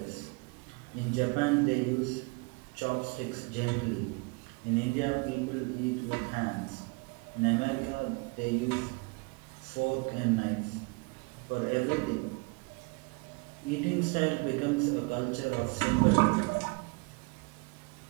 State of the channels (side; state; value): left; quieter; 30.2 dB